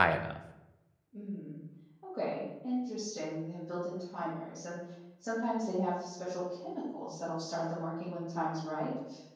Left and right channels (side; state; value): both; identical; correlation 1.00